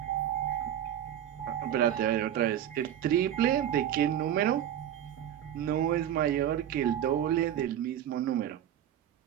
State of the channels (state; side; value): quieter; left; 10.7 dB